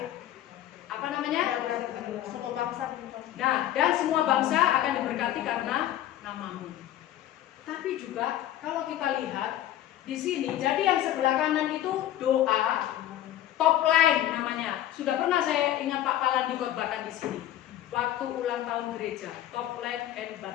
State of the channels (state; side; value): quieter; right; 12.6 dB